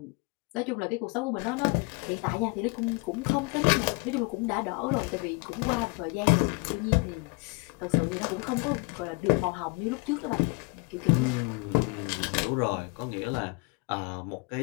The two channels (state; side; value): quieter; right; 29.6 dB